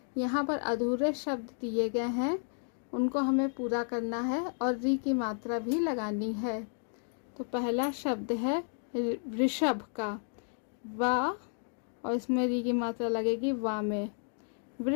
यहाँ पर अधूरे शब्द दिए गए हैं, उनको हमें पूरा करना है और री की मात्रा भी लगानी है। तो पहला शब्द है वृषभ का, वा, और इसमें री की मात्रा लगेगी वा में।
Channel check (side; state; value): right; silent; 56 dB below the other